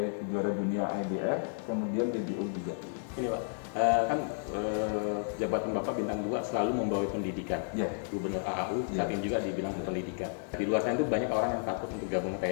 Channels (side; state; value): right; silent; digital silence